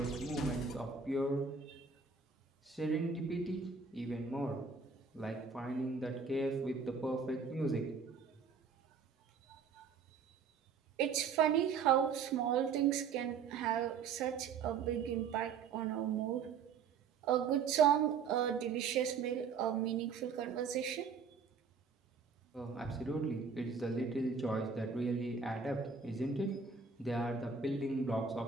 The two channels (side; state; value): left; quieter; 5.7 dB